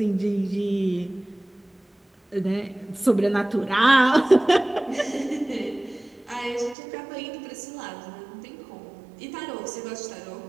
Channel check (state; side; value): drops out; left; at 6.8 s